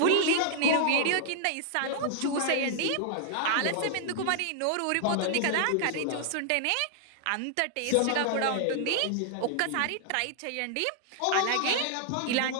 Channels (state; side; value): different; both; correlation 0.00